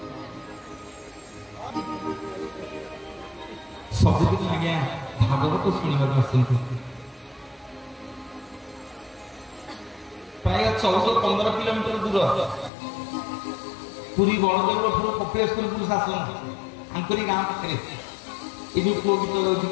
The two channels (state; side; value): drops out; right; at 12.7 s